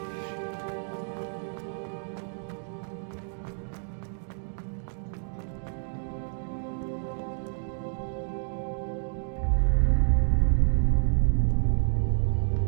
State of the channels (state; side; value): silent; left; digital silence